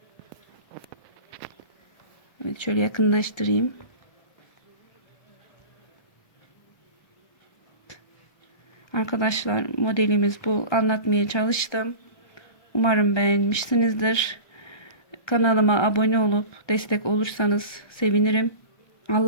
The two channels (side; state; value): right; late; 1.3 ms